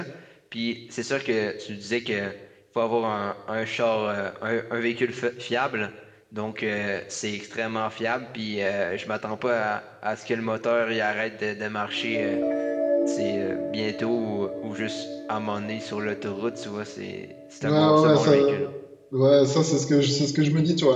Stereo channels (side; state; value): both; identical; correlation 1.00